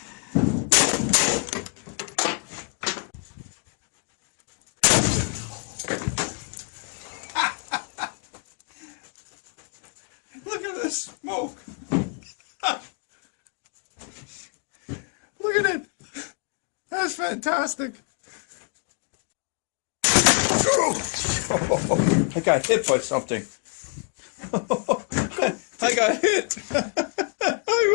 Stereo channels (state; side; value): quieter; right; 39.4 dB